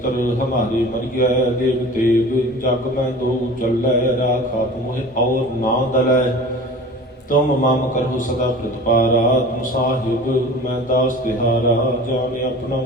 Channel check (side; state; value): both; normal; correlation 0.39